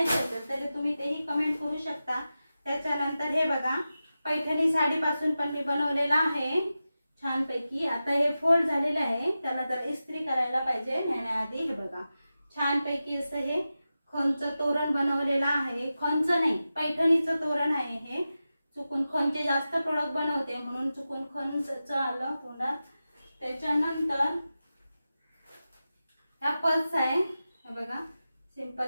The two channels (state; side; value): inverted; both; correlation -0.93